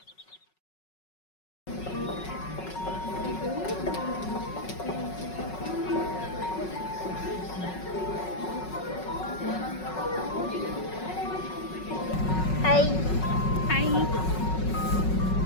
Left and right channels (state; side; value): late; right; 5.4 ms